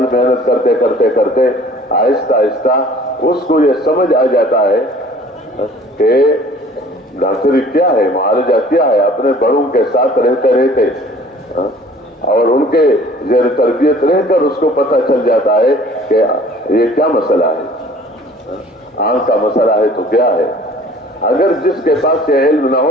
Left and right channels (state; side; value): normal; both; correlation 0.51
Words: محنت کرتے کرتے کرتے آہستہ آہستہ اس کو یہ سمجھ آ جاتا ہے کہ ڈاکٹری کیا ہے، معالجہ کیا ہے. اپنے بڑوں کے ساتھ رہتے رہتے اور ان کے زیر تربیت رہ کر اس کو پتہ چل جاتا ہے کہ یہ کیا مسئلہ ہے. آنکھ کا مسئلہ ہے تو کیا ہے؟ اگر جس کے پاس یہ علم نہ